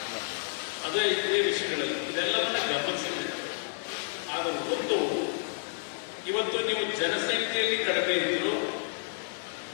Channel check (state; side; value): silent; right; 58 dB below the other